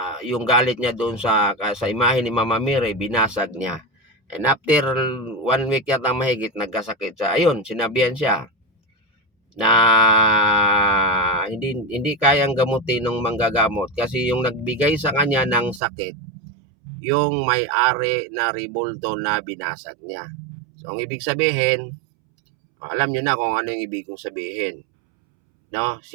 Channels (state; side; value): drops out; left; at 15.8 s